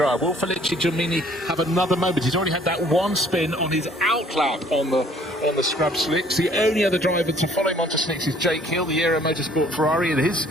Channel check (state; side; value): normal; both; correlation 0.58